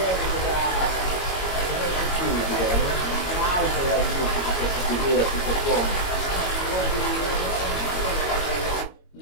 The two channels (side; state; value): right; late; 22 ms